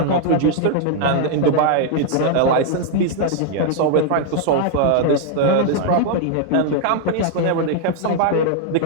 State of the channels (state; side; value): different; both; correlation 0.00